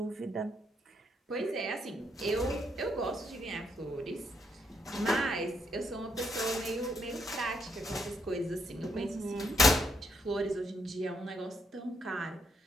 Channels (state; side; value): normal; both; correlation 0.76